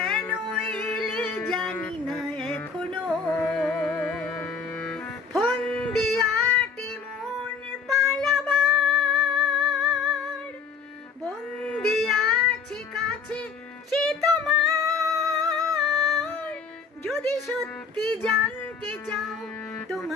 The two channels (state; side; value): quieter; right; 5.4 dB